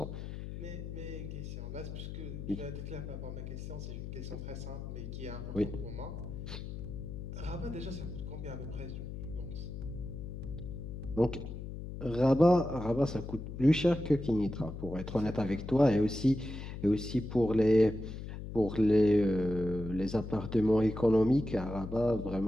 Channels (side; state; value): left; noise; hum, 8 dB below the sound